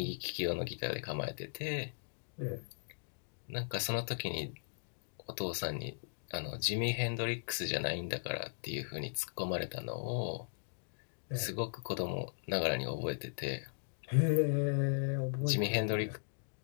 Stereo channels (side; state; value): right; silent; digital silence